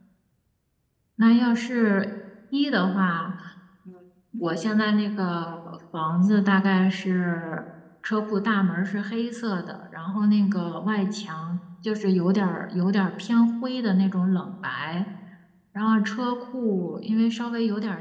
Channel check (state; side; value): identical; both; correlation 1.00